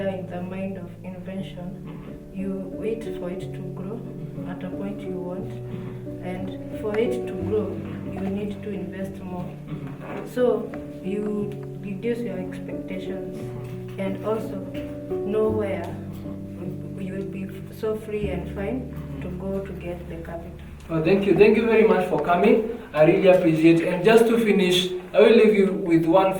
in the mind of invention. You wait for it to grow at a point you want, and for it to grow, you need to invest more. So you reduce your expectations, and also know where you will be so free and fine to go to get the capital. Oh, thank you very much for coming. I really appreciate it. And just to finish, I will leave you with one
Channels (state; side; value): identical; both; correlation 1.00